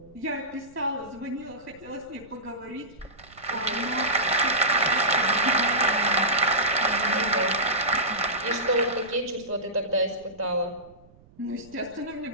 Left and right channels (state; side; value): noise; right; rumble, 25 dB below the sound